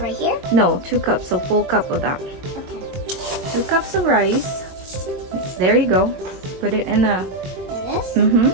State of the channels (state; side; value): late; left; 22 ms